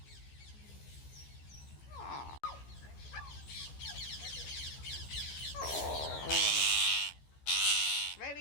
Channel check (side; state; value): right; late; 14 ms